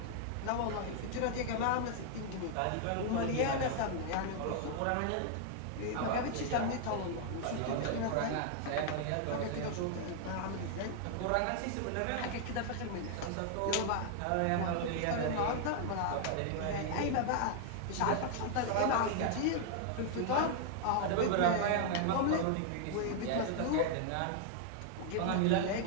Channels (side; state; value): both; different; correlation 0.00